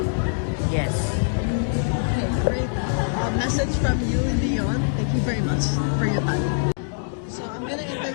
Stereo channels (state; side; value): silent; right; digital silence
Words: Yes. Okay, great. Message from you, Leon. Thank you very much for your time. So I'm gonna